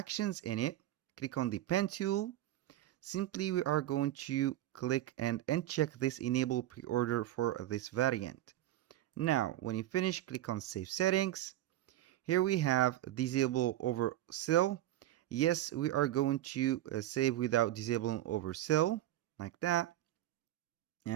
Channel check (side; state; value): left; quieter; 13.8 dB